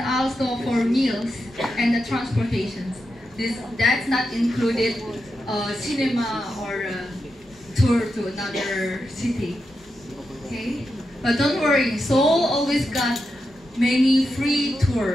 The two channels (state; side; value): normal; both; correlation 0.87